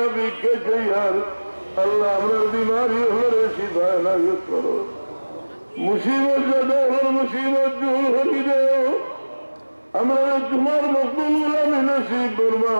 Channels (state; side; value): inverted; both; correlation -1.00